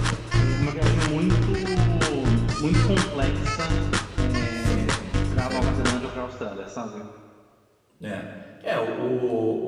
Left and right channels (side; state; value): both; identical; correlation 1.00